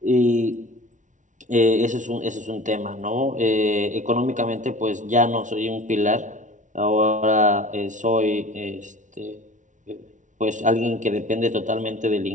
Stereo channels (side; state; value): left; late; 0.37 ms